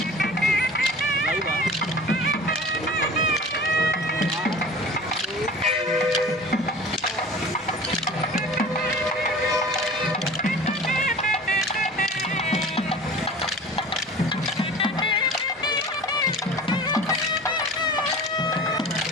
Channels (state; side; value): normal; both; correlation 0.40